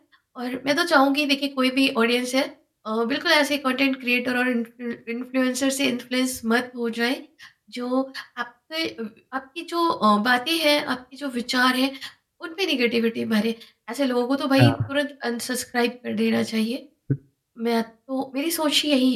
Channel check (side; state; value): both; identical; correlation 1.00